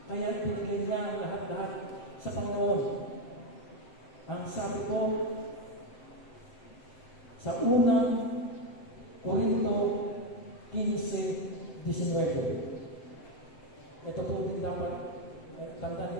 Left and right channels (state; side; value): late; right; 7.7 ms